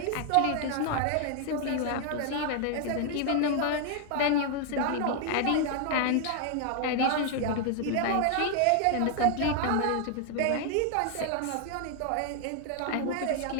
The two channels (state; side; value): different; both; correlation 0.00